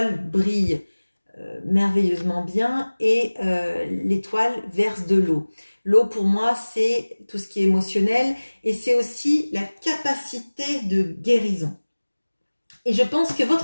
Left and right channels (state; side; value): inverted; both; correlation -1.00